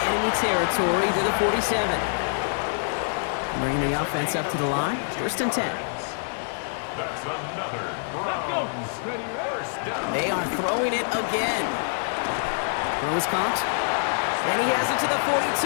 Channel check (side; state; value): right; silent; digital silence